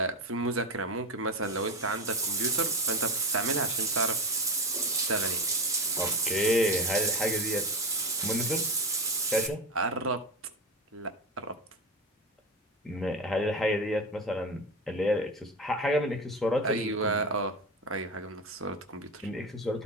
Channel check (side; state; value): both; normal; correlation 0.23